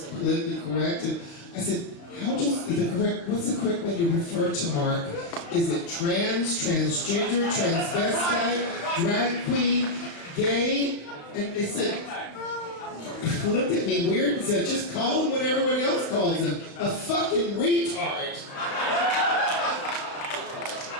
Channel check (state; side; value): late; right; 35 ms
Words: correct. And I said, what's the correct way to refer to Mark? Is it trans, transgender, transvestite, drag queen, gay? And they said, looked at me weird and said, just call him what everybody else calls him, a fucking retard.